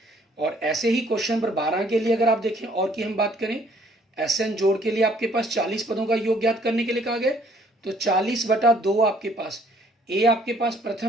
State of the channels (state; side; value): normal; both; correlation 0.61